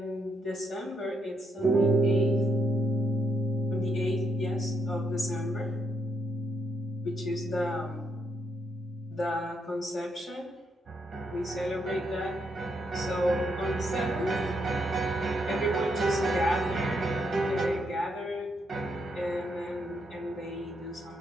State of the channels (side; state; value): both; normal; correlation 0.78